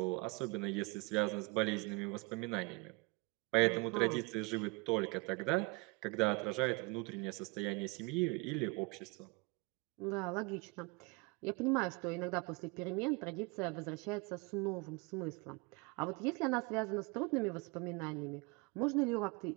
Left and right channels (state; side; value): quieter; left; 27.8 dB